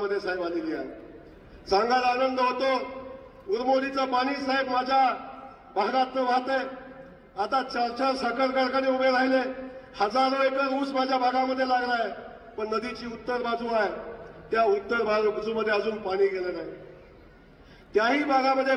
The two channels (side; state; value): both; identical; correlation 1.00